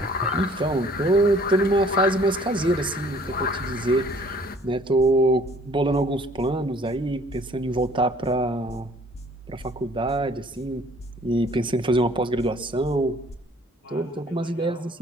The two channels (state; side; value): normal; both; correlation 0.56